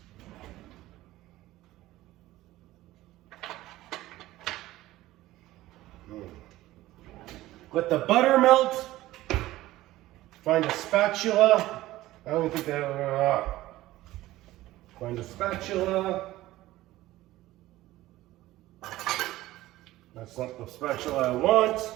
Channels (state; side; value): quieter; left; 16.4 dB